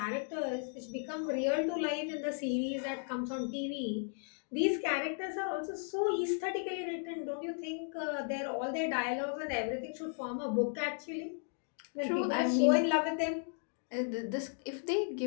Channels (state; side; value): silent; right; 54 dB below the other